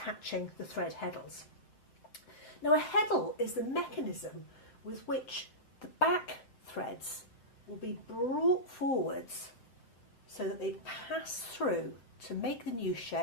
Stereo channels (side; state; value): right; late; 8.2 ms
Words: the thread heddles. Now, a heddle is the mechanism with which the back threads will be brought forwards so that they pass through to make the new